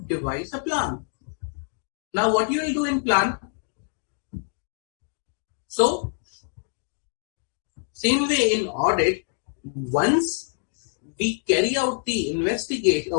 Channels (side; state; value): right; silent; 61 dB below the other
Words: devise a plan. Now, what you will do in plan? So, same way in audit, once we carry out the investigation,